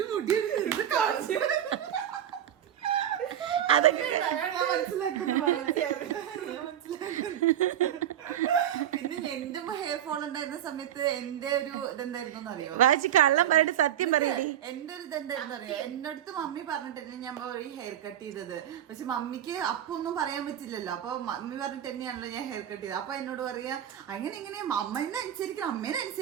അതൊക്കെ പിന്നെ എന്റെ ഹെയർ ഫോൾ ഉണ്ടായിരുന്ന സമയത്ത് എന്റെ ഒരു ഇതെന്തായിരുന്നു അറിയോ? വാച്ചി കള്ളം പറഞ്ഞിട്ട് സത്യം പറയടി. എന്റെ ഒരു ഇതെന്തായിരുന്നു അറിയോ? എന്റെ അടുത്ത് മമ്മി പറഞ്ഞിട്ട് ഞാൻ പോയി ഹെയർ കട്ട് ചെയ്തത്. പക്ഷെ മമ്മിക്ക് അപ്പൊ ഒന്നും പറയാൻ പറ്റില്ലല്ലോ. അപ്പൊ മമ്മി പറഞ്ഞിട്ട് തന്നെയാണല്ലോ ഞാൻ ഹെയർ കട്ട് ചെയ്തത്. അപ്പൊ എന്നോട് പറയാ അങ്ങനെ ഇങ്ങനെ അമ്മേനെ അനുസരിക്കണം, അമ്മേനെ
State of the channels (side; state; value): left; quieter; 10.6 dB